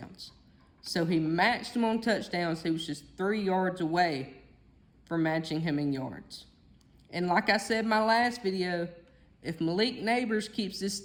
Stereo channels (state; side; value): identical; both; correlation 1.00